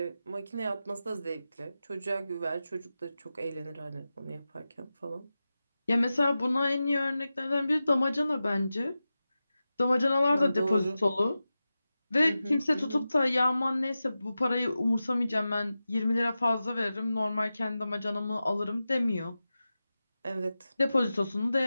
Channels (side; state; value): both; inverted; correlation -0.93